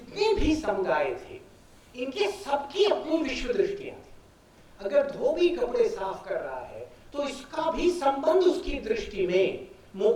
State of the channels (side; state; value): both; identical; correlation 1.00